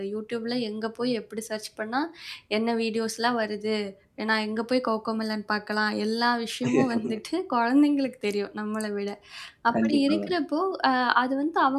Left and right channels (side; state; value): both; identical; correlation 1.00